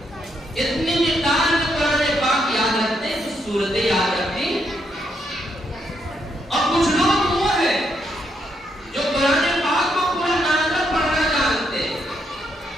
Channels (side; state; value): both; normal; correlation 0.77